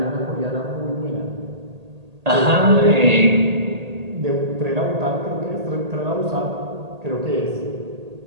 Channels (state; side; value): late; left; 1.8 ms